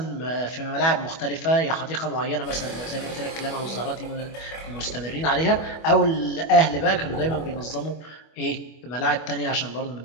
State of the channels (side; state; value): right; late; 25 ms